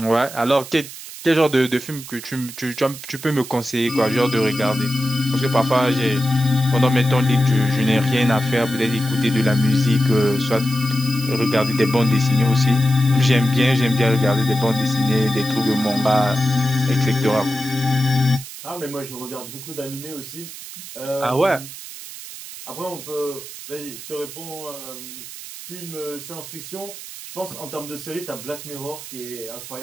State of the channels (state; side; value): noise; right; hiss, 13 dB below the sound